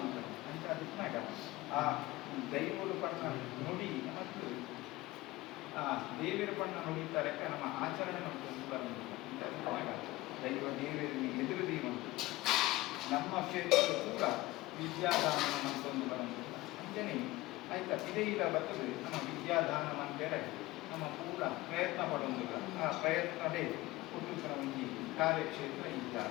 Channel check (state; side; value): quieter; right; 19.1 dB